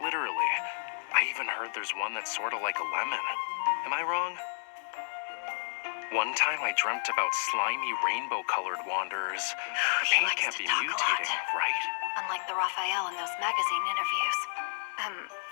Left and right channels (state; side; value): silent; right; 57 dB below the other